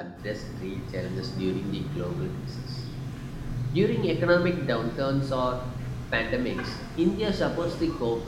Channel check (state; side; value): identical; both; correlation 1.00